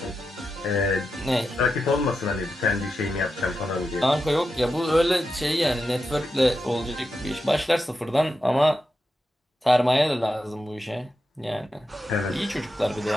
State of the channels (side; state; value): both; normal; correlation 0.88